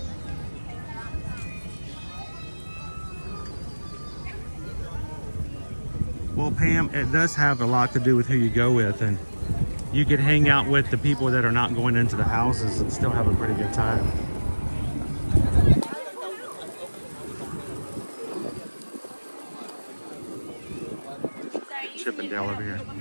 Well, Pam, it does have a lot to do with who you go with, and you could hang out with the people that are not going into the houses and still have a pretty good time. Chippendale over here.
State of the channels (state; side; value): inverted; both; correlation -1.00